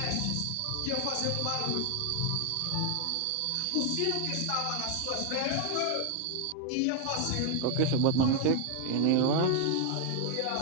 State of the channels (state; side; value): different; both; correlation 0.00